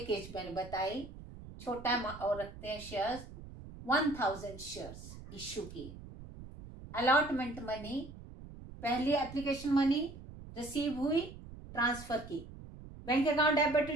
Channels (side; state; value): right; noise; rumble, 15 dB below the sound